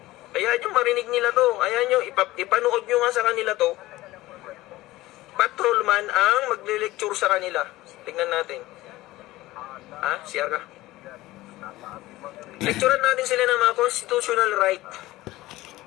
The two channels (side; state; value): right; quieter; 17.7 dB